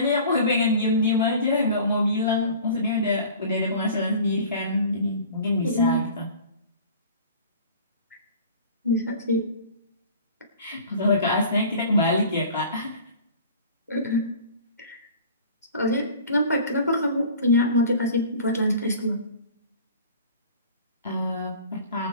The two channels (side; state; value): both; inverted; correlation -0.43